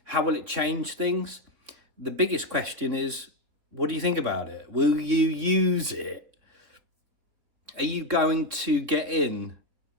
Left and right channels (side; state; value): left; late; 4.0 ms